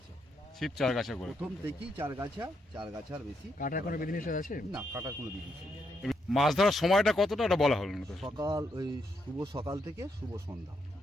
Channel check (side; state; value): both; normal; correlation 0.79